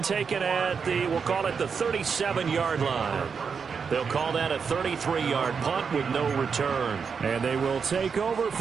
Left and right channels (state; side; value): quieter; left; 6.0 dB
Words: taken at the, we'll call it the 37-yard line. They'll call that a 33-yard punt with no return. And they will take over